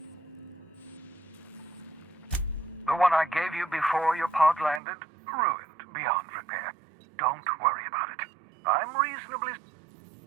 The one I gave you before your pod landed? Ruined beyond repair. Don't worry about it. I'm reasonably...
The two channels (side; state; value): left; drops out; at 4.8 s